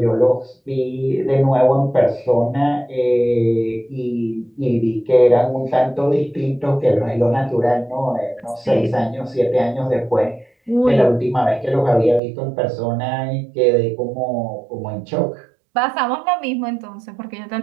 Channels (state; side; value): drops out; left; at 12.2 s